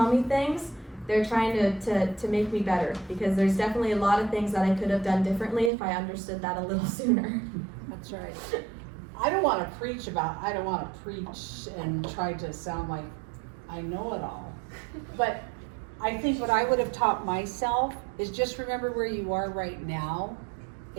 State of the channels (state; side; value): drops out; left; at 5.7 s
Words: me things. They're trying to make me better, because there's definitely a lot of things that I could have done differently if I understood that a little sooner. That's right. I don't wanna preach and try to sound like I know it all. But I think what I would have taught myself is just remember where you are right now.